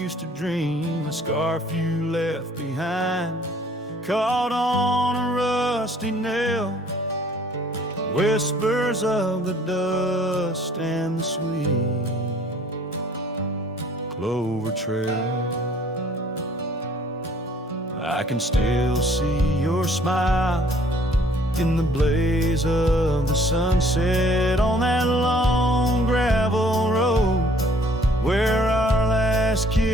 to dream. A scarf you left behind, caught on a rusty nail, whispers of the dust and the sweet clover trail. I can still see your smile in the blaze of the sunset on that long gravel road where our last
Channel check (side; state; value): both; normal; correlation 0.57